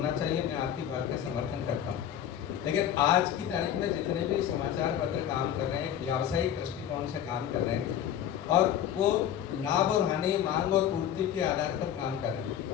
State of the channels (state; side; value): quieter; right; 10.2 dB